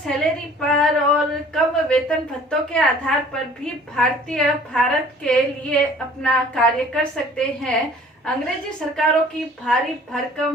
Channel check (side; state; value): both; normal; correlation 0.51